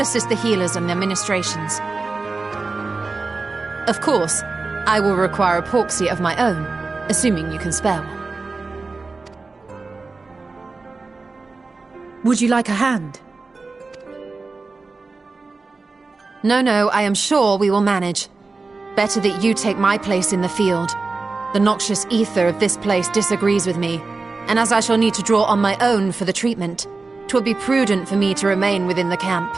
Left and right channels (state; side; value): quieter; left; 3.9 dB